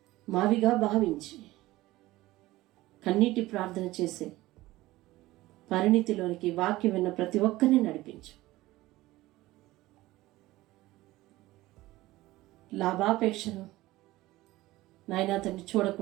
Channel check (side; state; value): left; quieter; 17.9 dB